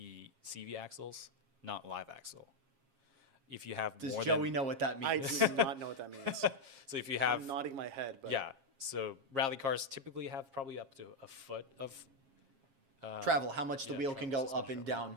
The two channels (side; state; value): left; late; 7.4 ms